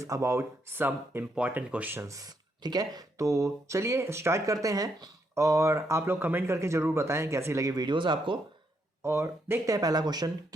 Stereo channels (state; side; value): normal; both; correlation 0.77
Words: about some important questions. ठीक है, तो चलिए स्टार्ट करते हैं और आप लोग कमेंट करके जरूर बताएं कैसी लगी वीडियोस आपको। और देखते हैं पहला क्वेश्चन